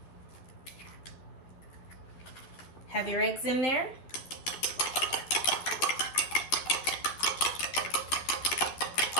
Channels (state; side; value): late; right; 12 ms